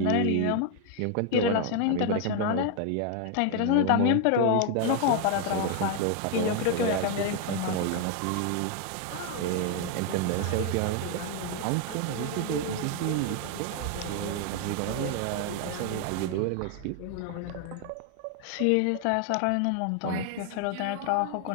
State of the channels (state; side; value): different; both; correlation 0.01